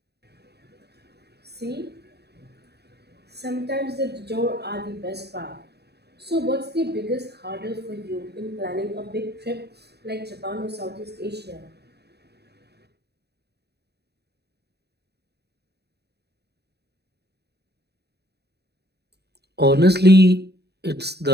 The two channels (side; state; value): left; late; 0.48 ms